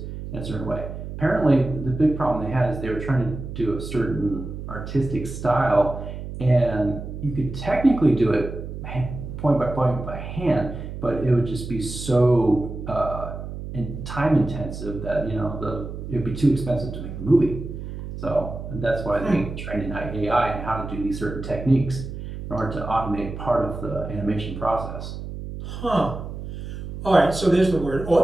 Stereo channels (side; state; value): right; noise; hum, 8 dB below the sound